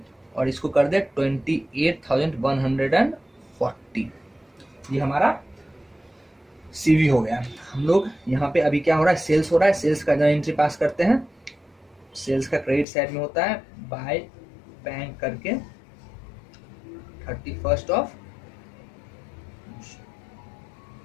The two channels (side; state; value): right; drops out; at 12.9 s